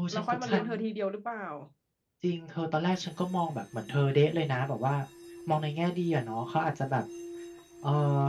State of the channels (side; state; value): both; identical; correlation 1.00